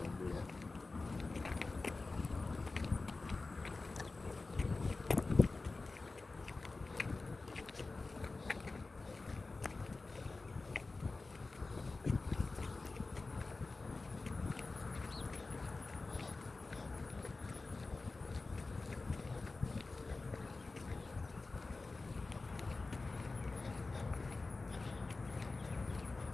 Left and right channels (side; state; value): right; quieter; 3.6 dB